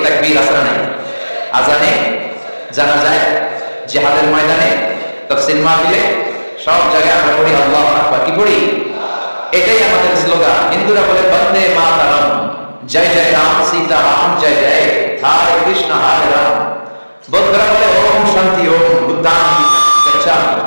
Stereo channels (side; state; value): both; inverted; correlation -1.00